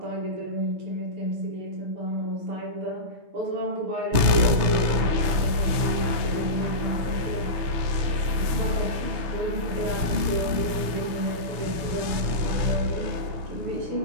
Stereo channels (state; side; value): late; left; 6.1 ms